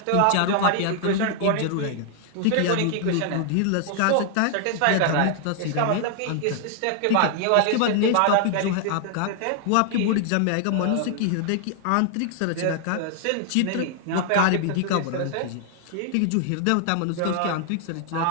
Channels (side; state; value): both; different; correlation 0.00